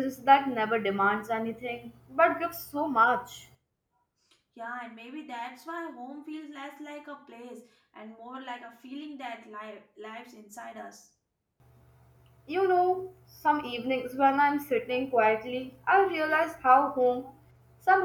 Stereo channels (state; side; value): identical; both; correlation 1.00